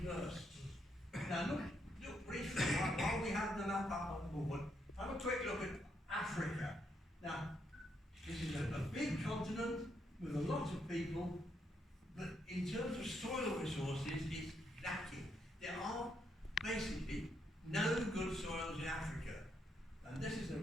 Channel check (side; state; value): both; normal; correlation 0.77